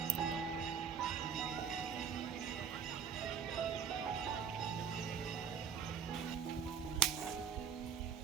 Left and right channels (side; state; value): left; quieter; 7.1 dB